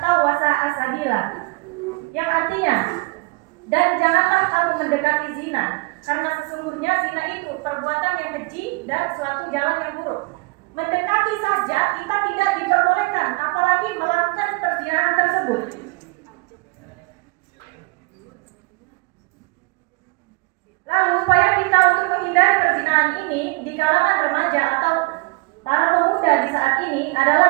wa sa'a sabila. Yang artinya, dan janganlah kamu mendekati zina, karena sesungguhnya zina itu perbuatan yang keji dan suatu jalan yang buruk. Mendekati saja kita tidak diperbolehkan, apalagi melakukan perzinahan tersebut. Lalu upaya kita untuk menghindari perzinahan ini di kalangan remaja atau para pemuda di saat ini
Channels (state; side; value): quieter; left; 27.1 dB